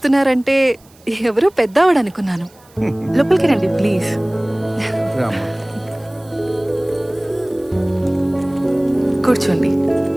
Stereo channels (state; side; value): noise; right; hiss, 29 dB below the sound